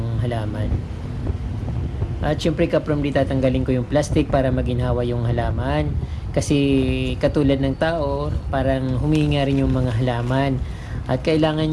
halaman. At syempre kaprom di tatanggalin ko yung plastic para maginhawa yung halaman, kasi katulad ng tao, parang humihinga rin yung mga halaman at kailangan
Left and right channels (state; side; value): identical; both; correlation 1.00